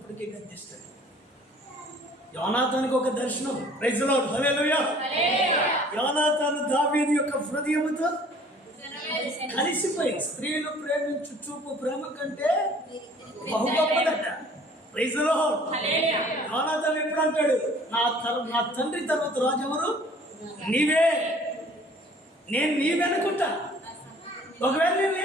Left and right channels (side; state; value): both; normal; correlation 0.53